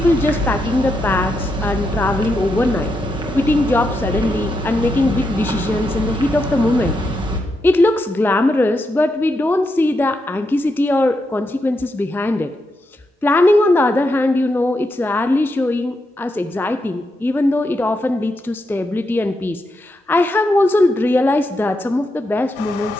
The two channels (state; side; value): normal; both; correlation 0.83